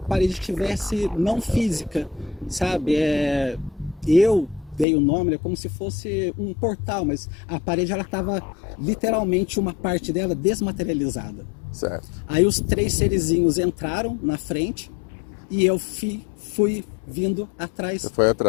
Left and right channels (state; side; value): drops out; right; at 4.9 s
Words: parede tivesse não física, sabe? Eu dei o nome, como se fosse um portal, mas a parede ela estava literalmente uma parte dela desmaterializada. Certo. Aí os 3 serizinhos entraram na frente e eu fui vindo atrás